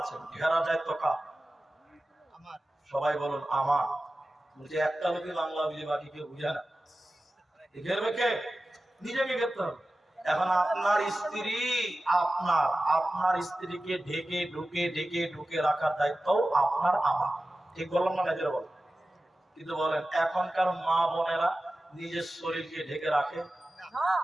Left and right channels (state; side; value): normal; both; correlation 0.95